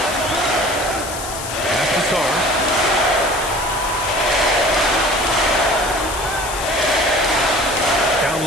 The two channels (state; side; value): noise; left; hiss, 9 dB below the sound